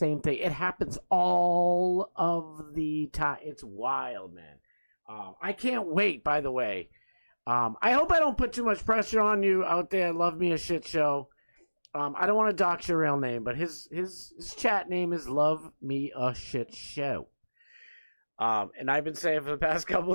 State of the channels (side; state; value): both; inverted; correlation -1.00